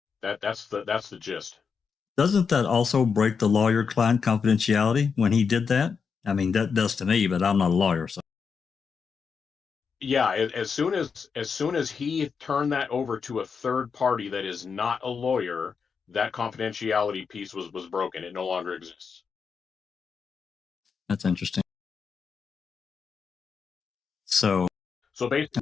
that's the gist. Doesn't that also break the lawyer-client confidentiality when he did that? I mean, that does to me, but I'm not a lawyer, so. Yeah, as soon as he turned that over to a third party that is not a lawyer, that confidentiality piece was broken. It no longer exists. That's interesting. So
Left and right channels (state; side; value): quieter; right; 5.9 dB